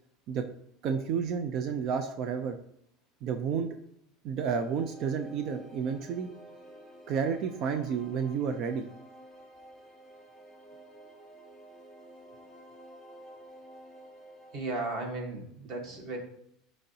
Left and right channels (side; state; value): left; quieter; 5.7 dB